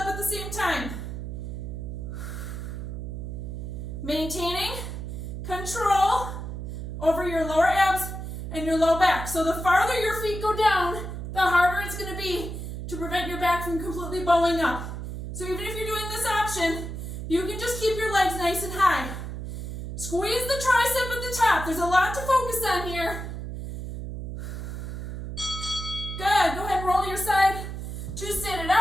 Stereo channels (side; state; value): right; noise; hum, 6 dB below the sound